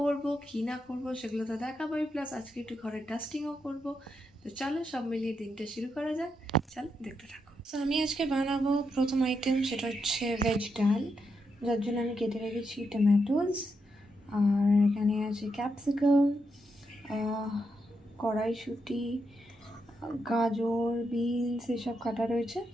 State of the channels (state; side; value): normal; both; correlation 0.82